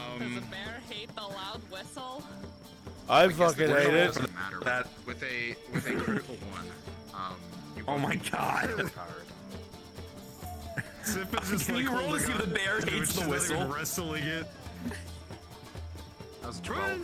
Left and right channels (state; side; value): identical; both; correlation 1.00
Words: bear hate the loud whistle? I fucking hate it. Doesn't matter. With a critical one, you Oh my god. Sif is just Can you roll to see if the bear hates the whistle? Wrestling it. That was